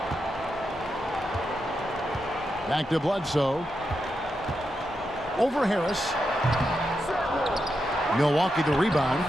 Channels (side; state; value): both; normal; correlation 0.86